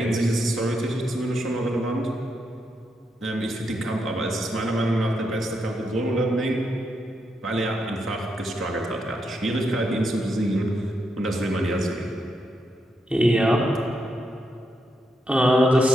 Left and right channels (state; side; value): normal; both; correlation 0.82